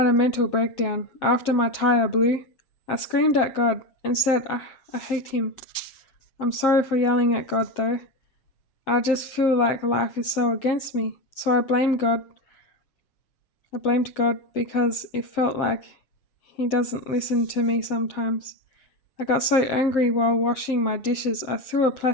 a mental breakdown. After my tire blew, I screamed at God and said, I hate him. I'm sorry for yelling at God though. I just feel like life is so against me. So I blamed God. I blamed God because it felt like he doesn't listen to me sometimes. I got so angry while washing my dishes, I threw a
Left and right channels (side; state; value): right; late; 7.5 ms